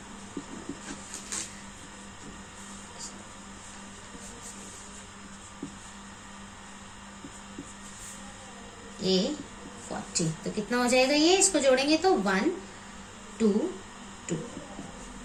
a 40। तो कितना हो जाएगा ये, इसको जोड़ेंगे तो 1 2 2।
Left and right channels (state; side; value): identical; both; correlation 1.00